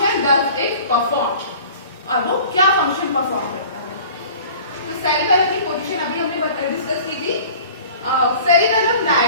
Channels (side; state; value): both; inverted; correlation -0.45